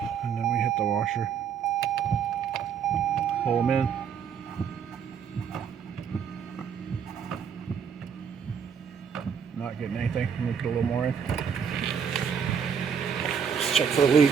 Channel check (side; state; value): left; quieter; 7.2 dB